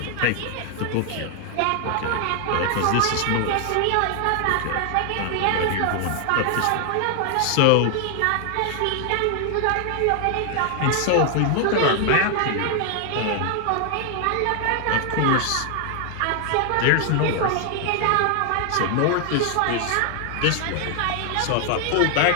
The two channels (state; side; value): different; both; correlation 0.00